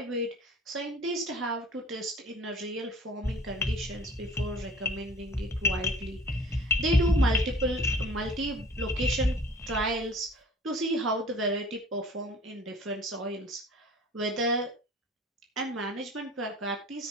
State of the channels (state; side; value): normal; both; correlation 0.48